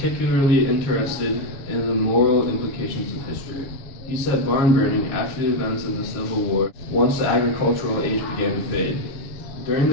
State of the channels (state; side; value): late; right; 7.1 ms